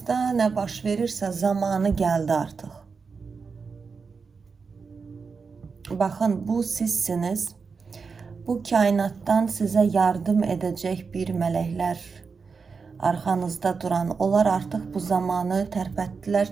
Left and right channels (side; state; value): left; quieter; 5.1 dB